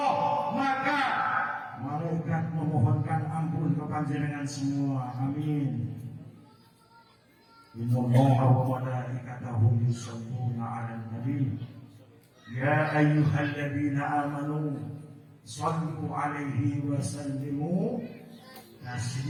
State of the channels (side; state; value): both; identical; correlation 1.00